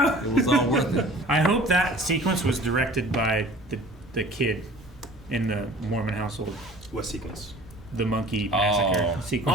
was all worth it. I hope that sequence was directed by the kid in the Mormon household. what sequence? The monkey massacre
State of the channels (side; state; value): both; normal; correlation 0.46